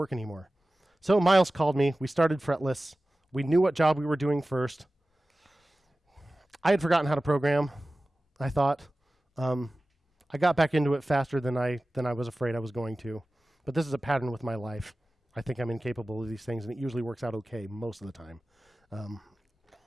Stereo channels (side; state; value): both; normal; correlation 0.96